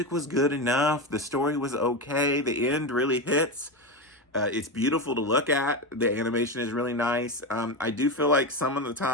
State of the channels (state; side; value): normal; both; correlation 0.16